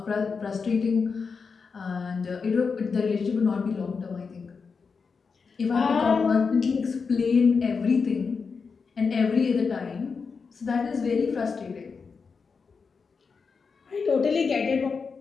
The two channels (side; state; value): right; quieter; 5.2 dB